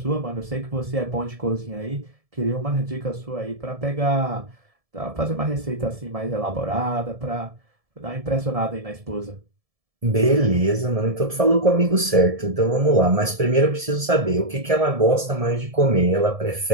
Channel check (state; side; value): late; left; 1.7 ms